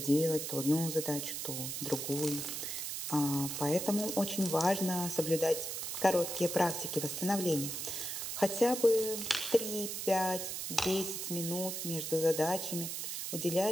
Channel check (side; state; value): right; noise; hiss, 4 dB below the sound